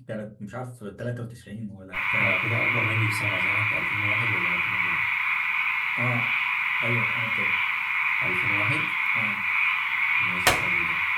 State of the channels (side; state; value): both; identical; correlation 1.00